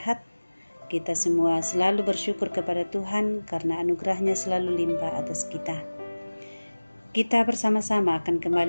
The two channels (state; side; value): inverted; both; correlation -1.00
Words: Kita semua selalu bersyukur kepada Tuhan karena anugerahnya selalu limpah atas kita. Kita bersama-sama akan